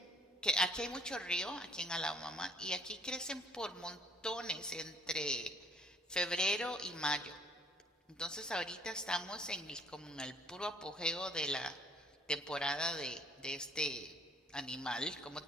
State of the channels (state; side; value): normal; both; correlation 0.61